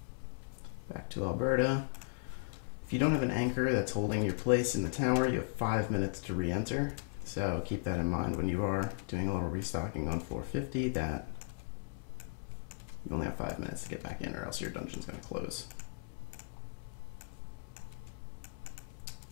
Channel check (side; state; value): right; silent; 53 dB below the other